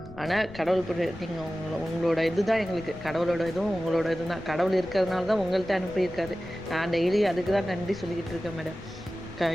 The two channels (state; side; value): noise; left; rumble, 16 dB below the sound